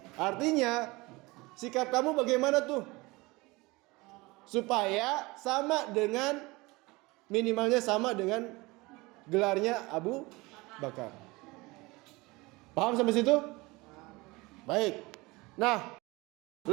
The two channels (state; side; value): quieter; left; 23.0 dB